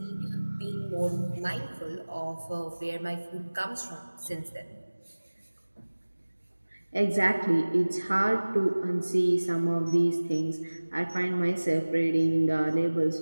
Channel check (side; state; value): both; inverted; correlation -1.00